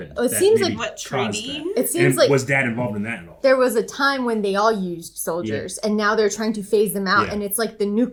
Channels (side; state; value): both; identical; correlation 1.00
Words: It seems like what treaty? It seems like was Dad involved in that at all? there was a time when they all used soldiers, and now they're trying to phase them out, and it's like the